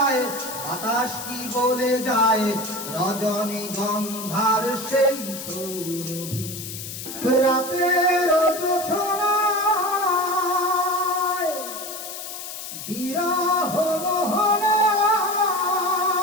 বাতাস কি বলে যায়, রজনী গন্ধার সেই সৌরভী। রাতের জোছনায় বিরহ মোহনায়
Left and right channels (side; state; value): left; noise; hiss, 9 dB below the sound